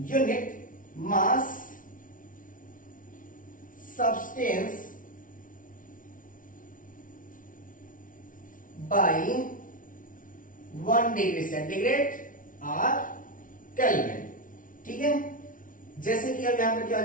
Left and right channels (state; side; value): late; right; 0.38 ms